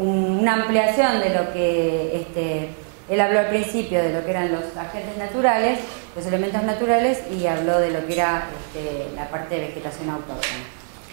ampliación de lo que él habló al principio, de lo que eran los agentes naturales, los elementos naturales, y habló de lo que era la parte de vegetación autóctona.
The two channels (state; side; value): silent; left; 56 dB below the other